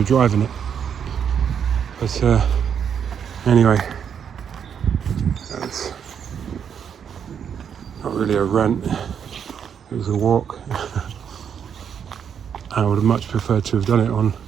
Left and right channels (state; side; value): quieter; left; 7.8 dB